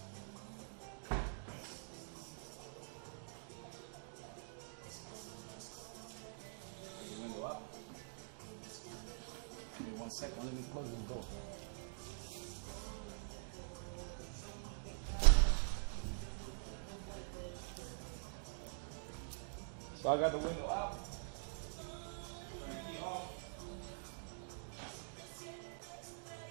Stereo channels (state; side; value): silent; left; digital silence